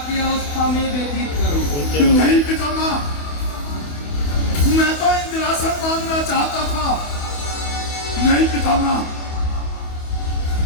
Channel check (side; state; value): right; late; 28 ms